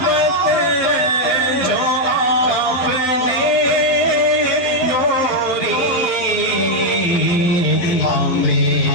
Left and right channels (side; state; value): right; late; 11 ms